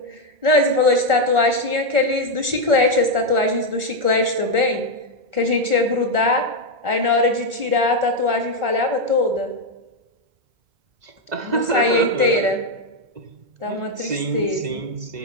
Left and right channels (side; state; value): left; late; 1.4 ms